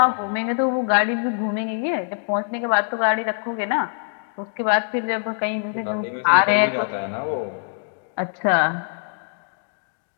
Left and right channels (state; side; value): silent; right; 63 dB below the other